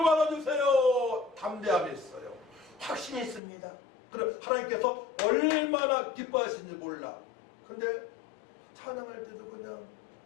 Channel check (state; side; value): drops out; right; at 3.4 s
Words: 받아주세요. 담대함이 있어요. 확신이 있습니다. 그럼 하나님께서 얼마나 기뻐하시는지 몰라. 근데 찬양할 때도 그냥